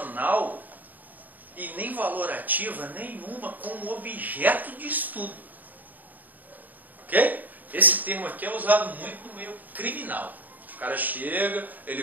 e nem valorativa nenhuma com o objeto de estudo. Ok? Esse termo aqui é usado muito no meio criminal. O cara chega, ele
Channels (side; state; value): left; late; 0.084 ms